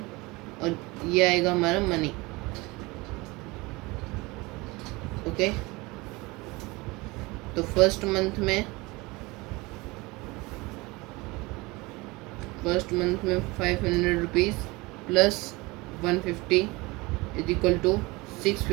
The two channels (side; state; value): left; quieter; 23.4 dB